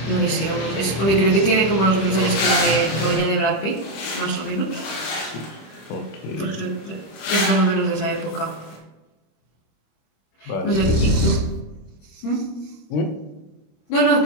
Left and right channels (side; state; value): right; late; 26 ms